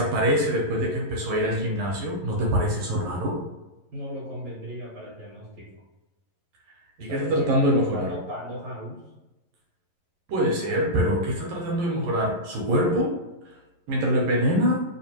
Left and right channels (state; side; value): late; left; 11 ms